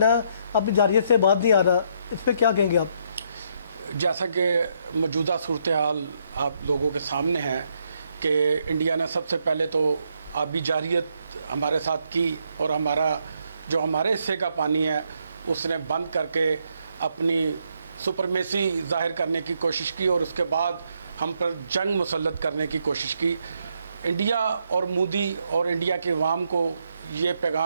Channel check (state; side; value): inverted; both; correlation -0.74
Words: अपनी जारियत से बात नहीं आ रहा, इस पर क्या कहेंगे आप? जैसा कि मौजूदा सूरत हाल आप लोगों के सामने है कि इंडिया ने सबसे पहले तो आबी जारियत हमारे साथ की और हमारे हिस्से का पानी है उसने बंद करके अपनी सुपरमेसी ज़ाहिर करने की कोशिश की और उसके बाद हम पर जंग मुसल्लत करने की कोशिश की। इंडिया और मोदी और इंडिया के अवाम को ये